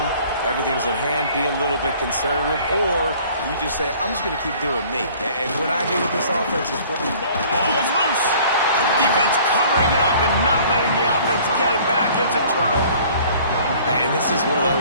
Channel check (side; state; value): both; inverted; correlation -0.52